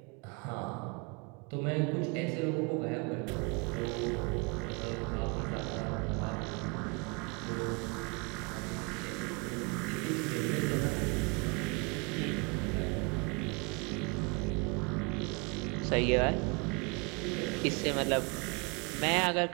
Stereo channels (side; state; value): left; quieter; 32.2 dB